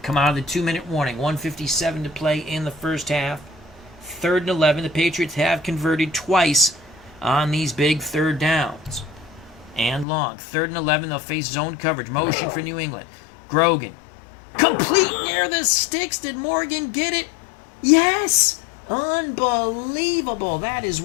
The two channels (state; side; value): drops out; right; at 10.1 s